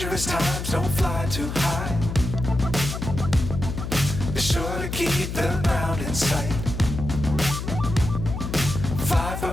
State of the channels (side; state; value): left; noise; hum, 5 dB below the sound